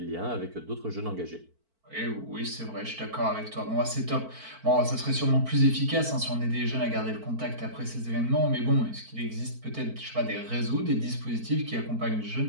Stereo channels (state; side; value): late; left; 4.5 ms